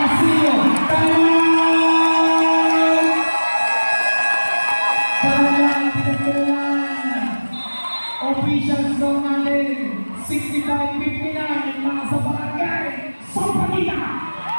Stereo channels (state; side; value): inverted; both; correlation -1.00